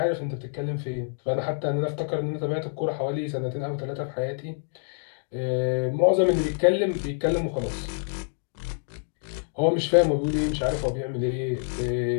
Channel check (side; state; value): right; silent; digital silence